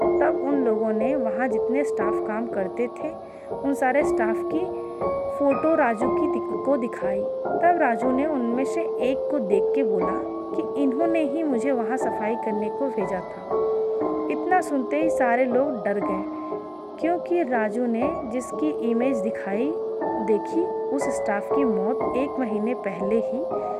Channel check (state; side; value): identical; both; correlation 1.00